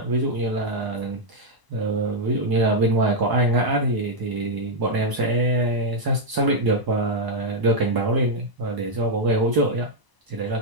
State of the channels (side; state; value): left; late; 1.0 ms